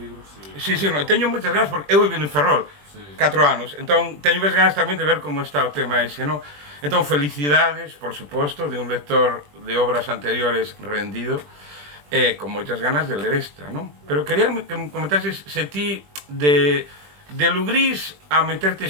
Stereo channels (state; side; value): late; left; 20 ms